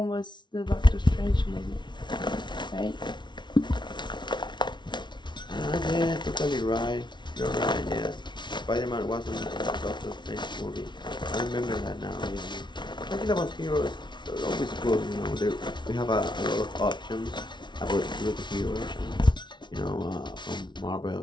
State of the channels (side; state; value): right; late; 0.22 ms